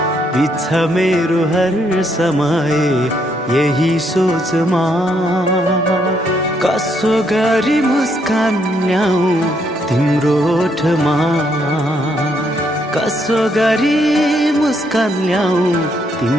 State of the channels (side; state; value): both; normal; correlation 0.73